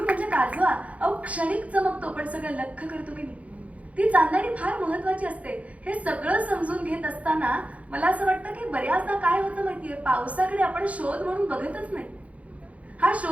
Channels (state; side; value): late; left; 0.066 ms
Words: म्हणजे काजवा. अहो क्षणिक चमकतो पण सगळं लख करतो की नाही. ती चांदणी फार महत्वाची असते. हे सगळं समजून घेत असताना मला असं वाटतं की बऱ्याचदा काय होतं माहितीये, पावसाकडे आपण शोध म्हणून बघतच नाही. हा